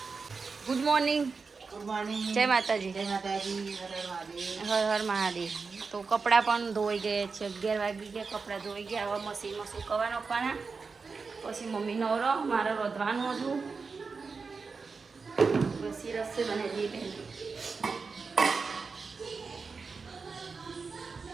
Good morning. જય માતાજી. હર હર મહાદેવ. તો કપડાં પણ ધોઈ ગયા છે. 11 વાગી ગયા, કપડાં ધોઈ ગયા. હવે મશીનમાં સુકવવા નાખવાના. પછી મમ્મી નવરો, મારે રોધવાનું હતું. પછી રસોઈ બનાવી દઈએ.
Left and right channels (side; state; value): left; quieter; 4.7 dB